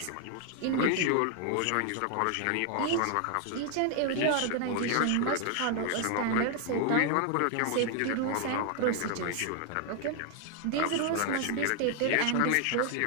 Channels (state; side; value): different; both; correlation 0.00